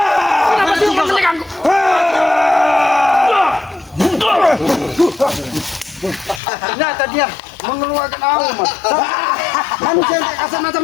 Kenapa sih kau menegangku? Ternyata dia mengeluarkan auma. Manusia yang kasar mata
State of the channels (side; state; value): right; drops out; at 6.4 s